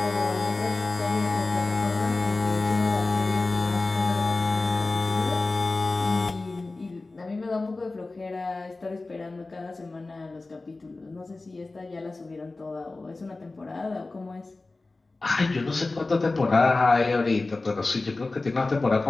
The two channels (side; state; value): right; quieter; 3.3 dB